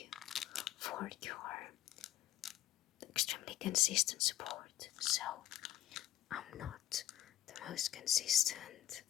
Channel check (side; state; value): right; quieter; 12.8 dB